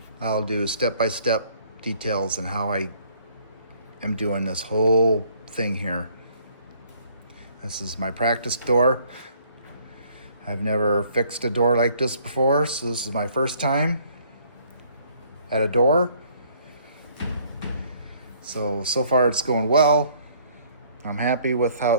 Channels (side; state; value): both; inverted; correlation -0.61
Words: I'll do step-by-step details on how I am doing this whole thing here. This is my practice door. I've never fixed a door like this before, so this is my first time at a door. So far it's going well. I'm happy with how